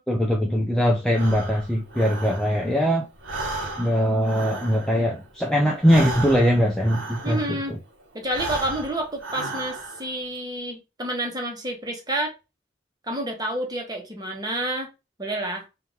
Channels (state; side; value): normal; both; correlation 0.72